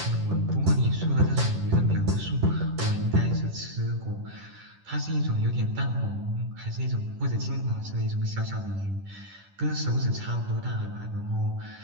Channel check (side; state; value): left; late; 10 ms